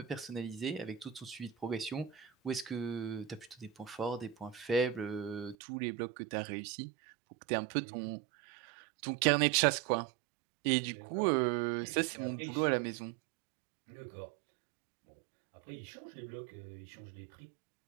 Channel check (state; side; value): drops out; left; at 5.6 s